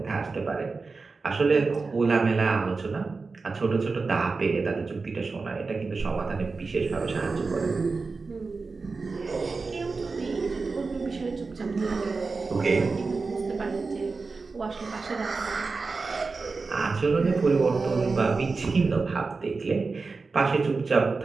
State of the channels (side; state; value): left; quieter; 4.2 dB